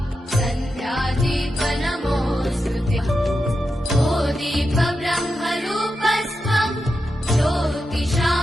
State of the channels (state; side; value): normal; both; correlation 0.88